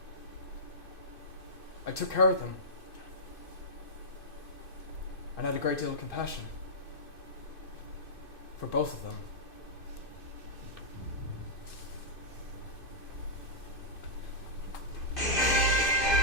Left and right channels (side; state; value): right; late; 2.5 ms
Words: I took care of them. And had a great deal of compassion for both of them.